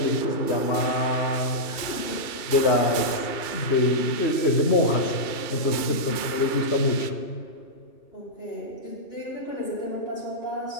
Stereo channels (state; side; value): late; right; 2.3 ms